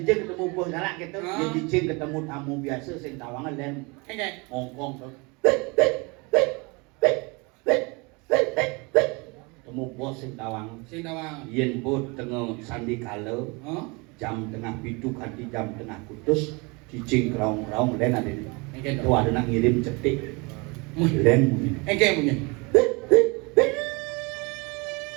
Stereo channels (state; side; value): quieter; left; 28.3 dB